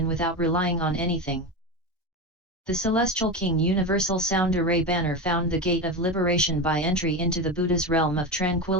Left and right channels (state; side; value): normal; both; correlation 0.20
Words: without relying on anything. The celestial king universal sound array banner found the gate of liberation by entry into the Buddha's realm of